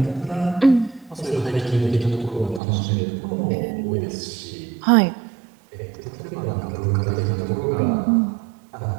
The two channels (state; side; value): drops out; left; at 2.6 s